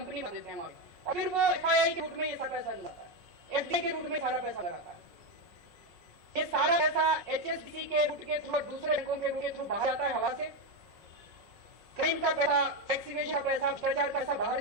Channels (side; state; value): left; late; 5.5 ms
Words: बना देते हैं वहां, और फिर वो एफआईआई के रूट में ये सारा पैसा जाता है, एफडीए के रूट में सारा पैसा आता है। ये सारा पैसा HSBC के रूट के थ्रू, दूसरे बैंकों के रूट के थ्रू बाहर आता है हवा से। क्राइम का पैसा, टैक्स इवेजन का पैसा, भ्रष्टाचार का पैसा बाहर